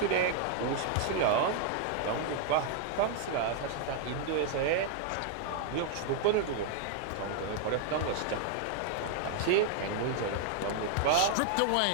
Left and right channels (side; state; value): both; different; correlation 0.00